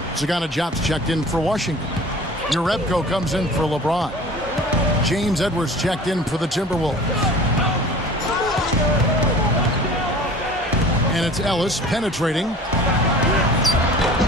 Sagana Jobs checked in for Washington. Urebko comes in for LeBron. James Edwards checked in for the Timberwolves. And it's Ellis penetrating.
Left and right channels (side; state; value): both; normal; correlation 0.43